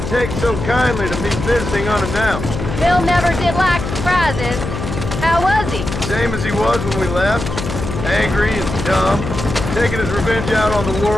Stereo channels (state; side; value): noise; left; hum, 6 dB below the sound